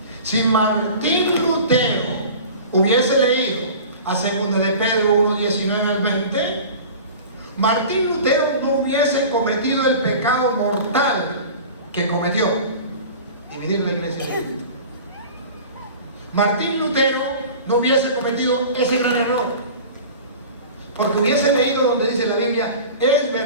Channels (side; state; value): both; inverted; correlation -0.38